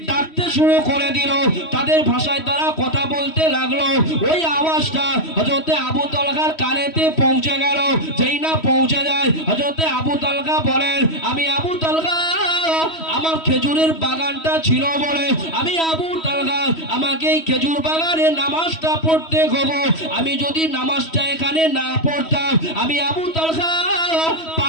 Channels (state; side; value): late; right; 3.1 ms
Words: ডাকতে শুরু করে দিল, তাদের ভাষায় তারা কথা বলতে লাগলো। ওই আওয়াজটা হযরত আবু তালহার কানেতে পৌঁছে গেল। যেই না পৌঁছে যায়, হযরত আবু তালহা বলেন, আমি আবু তালহা, আমার খেজুরের বাগানটা ছিল বলে আমি আবু তালহা, আমাকে এই খেজুর বাগানে নামাজটা পড়তে হবে। আমি যদি নামাজটা এখানে না পড়তাম, আমি আবু তালহা